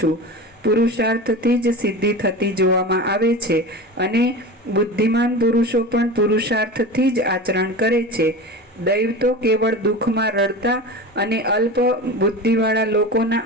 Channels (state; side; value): normal; both; correlation 0.30